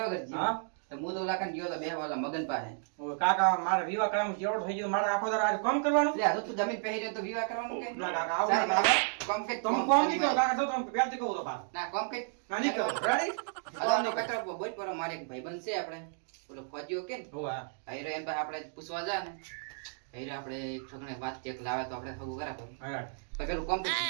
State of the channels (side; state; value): left; silent; digital silence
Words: વગર જી હા તો હું તો લાકન ગયો તો બે વાલા મગન પાસે ઓ કાકા મારા વિવાહ કરવામાં જેવડો થઈ ગયો મારે આખો દાડો કામ કરવાનું. એટલે આ તો તું જમીન પહેરી રહ્યો તો વિવાહ કરવાનું કે ના કાકા આવું સારું, ના કાકા. કોમ કે તમે કોમ નહીં કરો કાકા તો તમે પહેરતી કહું તો બા ના કોમ કે ના નહીં કરો રેડી આનો કચરો બોલ પર મારે એક ભાઈબંધ છે આપણે ઓલો ફોજીઓ કે ને હોવા આયરો એમ પાસે આપણે પૂછવા જા ને આયરો આપણે એક છોકરાને વાત ચેક લાવે તો આપણે હગું કરા તો હા પેલું કોમ કે